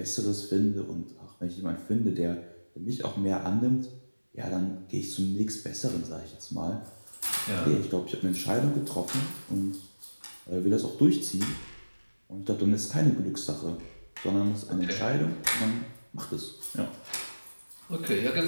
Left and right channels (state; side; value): inverted; both; correlation -1.00